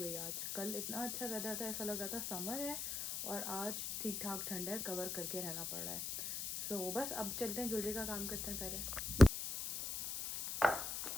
आज। कल इतना अच्छा वेदर था, ऐसा लग रहा था समर है, और आज ठीक ठाक ठंड है, कवर करके रहना पड़ रहा है। सो बस अब चलते हैं, ज्वेलरी का काम करते हैं पहले।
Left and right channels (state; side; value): noise; left; hiss, 4 dB below the sound